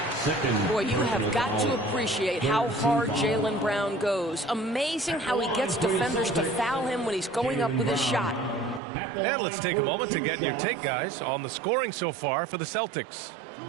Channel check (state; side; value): drops out; left; at 8.8 s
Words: Boy, you have got to appreciate how hard Jaylen Brown goes. Amazing how he gets defenders to foul him when he's going up with his shot. And let's take a moment to get your take, guys, on the scoring so far for the Celtics.